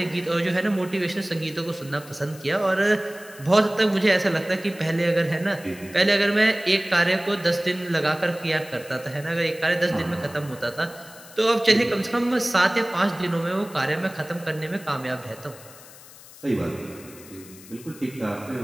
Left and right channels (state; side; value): noise; left; hiss, 20 dB below the sound